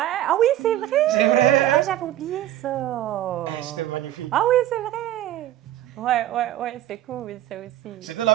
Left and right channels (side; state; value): left; quieter; 13.2 dB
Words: ah oui, c'est vrai! C'est vrai! Ah, j'avais oublié ça! C'était magnifique. Ah oui, c'est vrai! Ouais, c'est cool, ça aussi. C'était